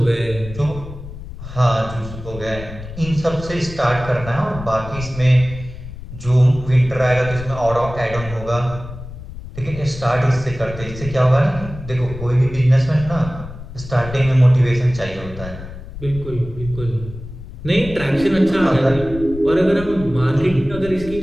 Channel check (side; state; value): left; noise; rumble, 12 dB below the sound